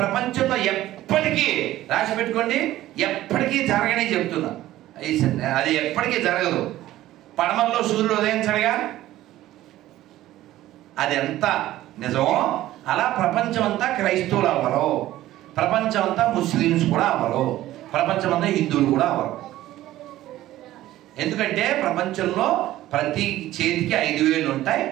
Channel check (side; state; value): left; quieter; 14.8 dB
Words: ప్రపంచంలో ఎప్పటికీ రాసి పెట్టుకోండి, ఎప్పటికీ జరగనే చెప్తున్నా, అది ఎప్పటికీ జరగదు. పడమల్లో సూర్యుడు ఉదయించడుగా, అది ఎంత నిజమో అలా ప్రపంచం అంతా క్రైస్తవులు అవ్వరు, ప్రపంచం అంతా ముస్లిమ్స్ కూడా అవ్వరు, ప్రపంచం అంతా హిందువులు కూడా అవ్వరు. ఎందుకంటే ప్రపంచంలో ప్రతి చేతికి 5 వేళ్ళు ఉంటాయి.